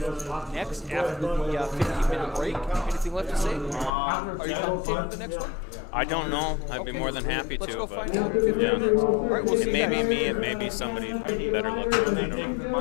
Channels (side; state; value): right; drops out; at 3.9 s